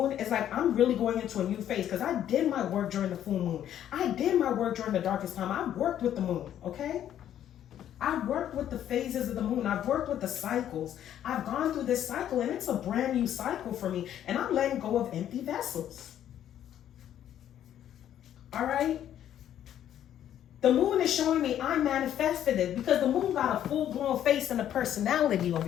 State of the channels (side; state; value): right; quieter; 10.8 dB